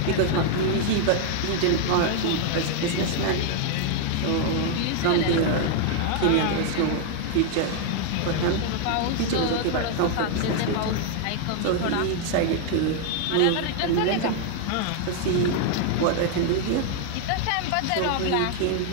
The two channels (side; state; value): both; different; correlation 0.00